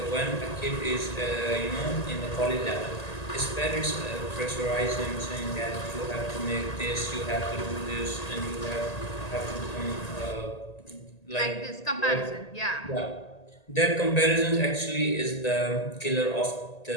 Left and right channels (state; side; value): late; right; 1.8 ms